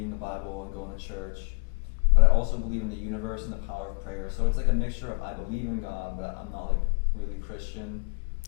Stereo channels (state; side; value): quieter; right; 35.8 dB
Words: the Bible and going to church. But I also believe in the universe and the power of prayer. So it's a mixture of I believe in God, but I'm not really Christian.